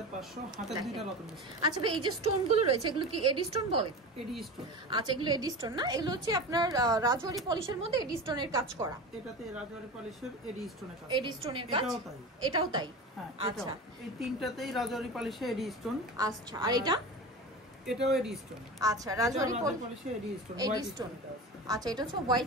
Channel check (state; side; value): normal; both; correlation 0.29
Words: হাতের দুইটা রতন। আচ্ছা ভাই, এই যে স্টোন গুলো রয়েছে এগুলো কি এডি স্টোন বলে? এডি স্টোন। আচ্ছা, এগুলো এডি স্টোন না? এগুলো হচ্ছে আপনার রাজওয়ারি পলিশের মধ্যে এডি স্টোনের কাজ করা। এটাতে রাজওয়ারি পলিশের এডি স্টোনের কাজ। এডি স্টোনের কাজ, এটাও তাই? আচ্ছা, এই তিনটাতেই রাজওয়ারি পলিশে এডি স্টোন। আচ্ছা, আর এটাও এডি স্টোন। আচ্ছা, রাজওয়ারি পলিশে এডি স্টোন, এডি স্টোন। আচ্ছা, এটা হচ্ছে